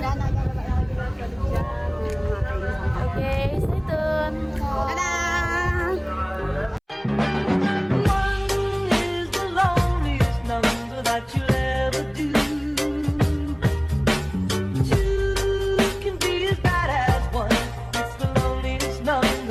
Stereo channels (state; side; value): identical; both; correlation 1.00